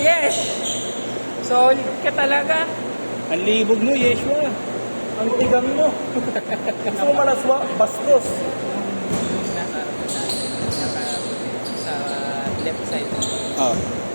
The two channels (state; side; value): inverted; both; correlation -1.00